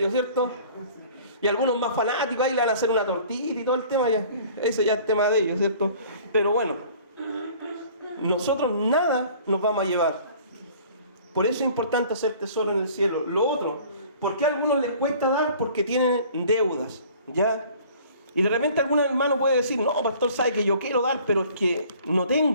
¿cierto? Y algunos más fanáticos ahí le van a hacer una tortita y todo el tema, ya. Eso ya es tema de ellos, ¿cierto? Pero bueno, nosotros nada nos vamos a llevar. Por eso es importante hacer tesoro en el cielo. Lo otro, ¿por qué a algunos les cuesta dar? Porque tienen deudas, ¿ya? Y de repente algún hermano puede decir, no, pastor, sabe que yo quiero dar, pero es que no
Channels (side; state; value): both; inverted; correlation -0.50